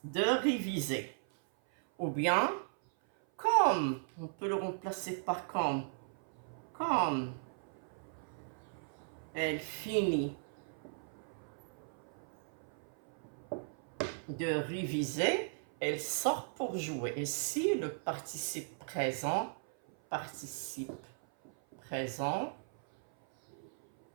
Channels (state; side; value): silent; left; 53 dB below the other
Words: de réviser. Ou bien, comme, on peut le remplacer par comme elle finit de réviser, elle sort pour jouer. Et si le participe présent